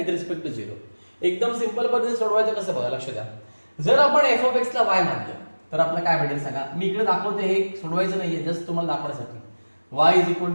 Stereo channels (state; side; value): inverted; both; correlation -1.00